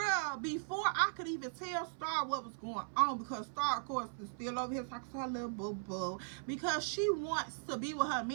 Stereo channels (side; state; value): left; silent; 52 dB below the other